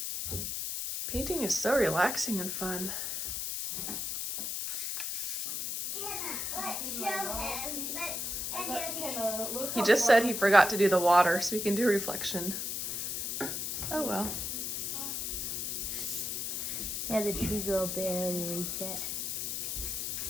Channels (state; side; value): noise; left; hiss, 2 dB below the sound